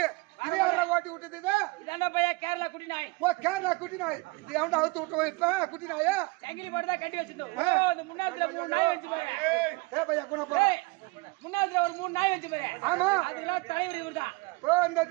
இது யாரா ஓட்டி விட்டது இதாண்டா பையா கேரளா குட்டி நாய். ஓ கேரளா குட்டி நாய். இது எவன்டா அவுத்து விட்டோம் இப்ப குட்டி நாயா? சங்கிலி போட்டு தான் கட்டி வச்சிருந்தோம். ஓ இந்த முன்னாத்துல 3 நாய் வச்சு பாரு. ஏ பையா குண போ. முன்னாத்துல ஒரு 3 நாய் வச்சு பாரு. ஆமா. அதுலாம் தலைவர் இவர்தான். ஓ இந்த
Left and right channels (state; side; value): quieter; left; 25.6 dB